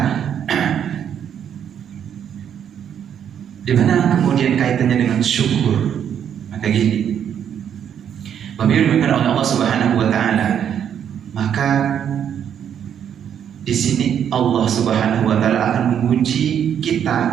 di mana kemudian kaitannya dengan syukur? Maka gini, Bapak Ibu dimuliakan oleh Allah Subhanahu wa taala, maka di sini Allah Subhanahu wa taala akan menguji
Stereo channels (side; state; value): left; quieter; 8.9 dB